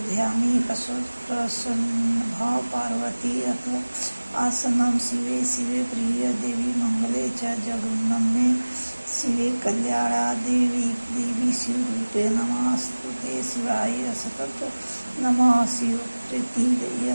ध्यामी प्रसन्नभाव पार्वती। अथ आसनं शिवे शिवे प्रिय देवी मंगले च जगन्नमे शिवे कल्याणा देवी शिवरूपे नमस्तुते शिवाय सतत नमः शिवप्रीति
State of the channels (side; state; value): both; inverted; correlation -1.00